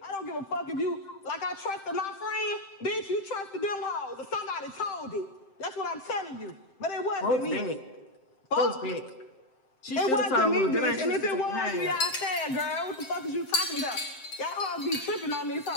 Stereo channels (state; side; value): late; right; 7.7 ms